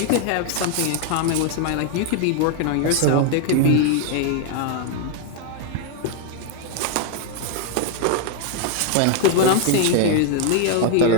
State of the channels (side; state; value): both; different; correlation 0.00